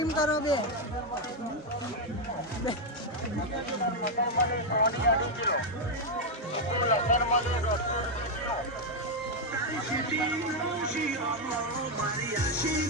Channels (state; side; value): normal; both; correlation 0.01